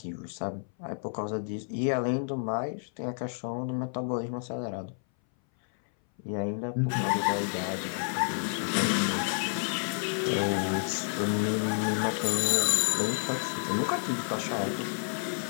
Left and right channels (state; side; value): silent; right; 58 dB below the other